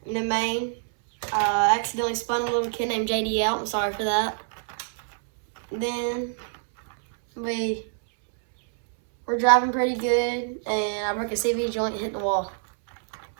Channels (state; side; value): silent; left; 61 dB below the other